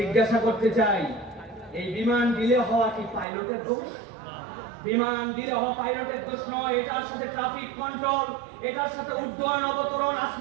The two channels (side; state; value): left; drops out; at 3.2 s